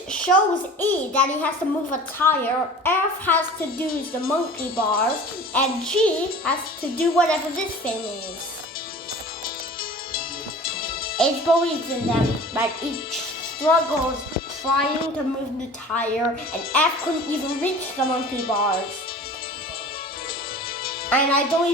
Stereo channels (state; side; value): normal; both; correlation 0.41